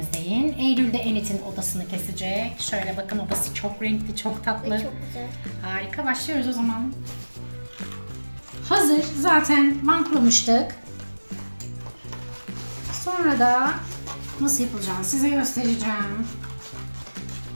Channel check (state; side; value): inverted; both; correlation -1.00